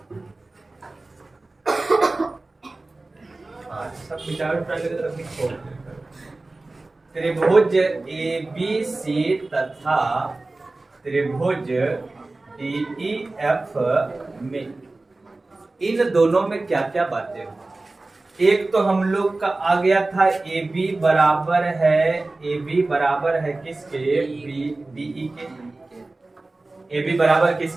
सब त्रिभुज ABC तथा त्रिभुज DEF में, इन दोनों में क्या क्या बातें हो। एक तो हम लोग का आ गया था AB बराबर है किसके, DE के, AB बराबर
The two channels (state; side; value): quieter; left; 3.1 dB